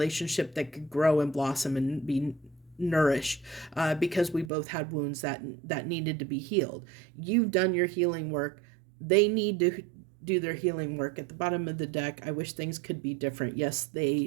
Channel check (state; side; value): drops out; left; at 4.5 s